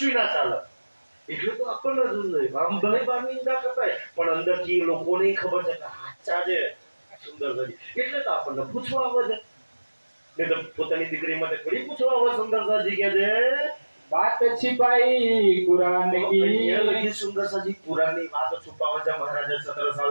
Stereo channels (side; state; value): both; inverted; correlation -1.00